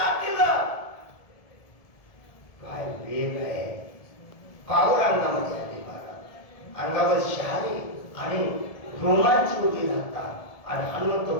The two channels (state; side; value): late; right; 1.7 ms